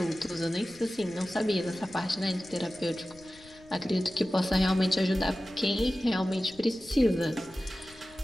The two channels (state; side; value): noise; left; rumble, 24 dB below the sound